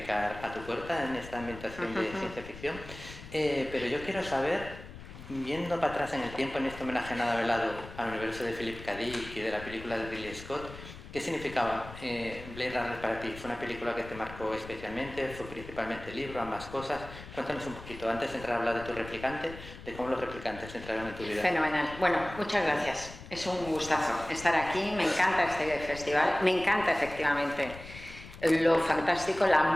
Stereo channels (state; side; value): noise; left; rumble, 14 dB below the sound